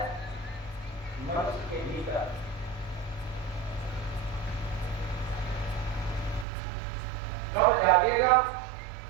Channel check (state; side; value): drops out; left; at 6.5 s